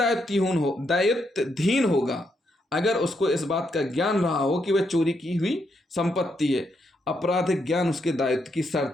होगा अगर उसको इस बात का ज्ञान रहा हो कि वह चोरी की हुई संपत्ति है। आपराधिक ज्ञान उसके दायित्व की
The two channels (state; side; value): normal; both; correlation 0.79